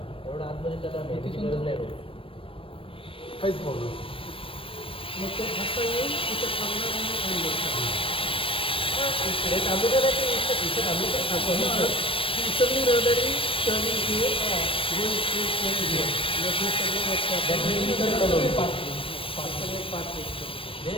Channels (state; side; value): late; right; 0.26 ms